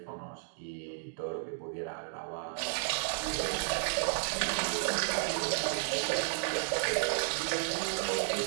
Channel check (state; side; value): silent; left; digital silence